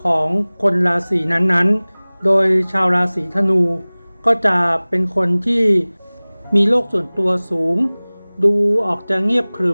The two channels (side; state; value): both; inverted; correlation -1.00